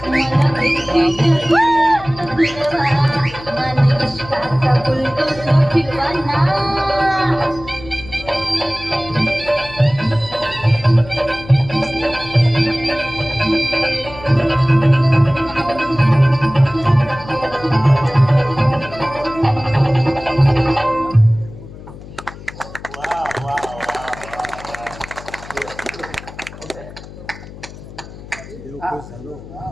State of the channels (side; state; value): left; noise; hum, 16 dB below the sound